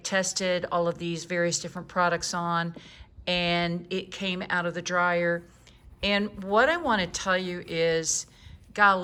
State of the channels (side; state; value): both; identical; correlation 1.00